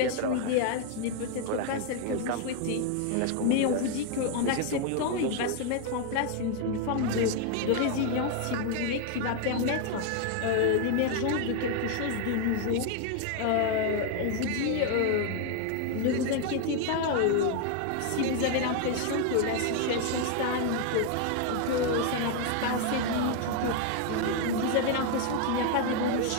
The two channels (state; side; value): different; both; correlation 0.00